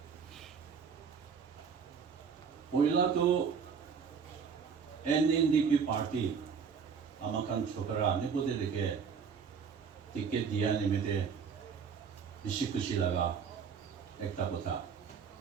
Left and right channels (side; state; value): left; quieter; 6.3 dB